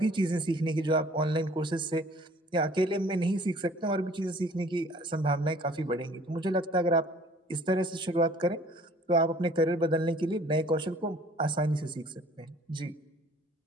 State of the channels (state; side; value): normal; both; correlation 0.53